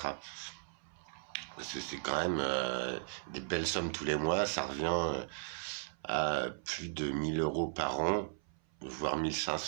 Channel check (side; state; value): left; silent; 53 dB below the other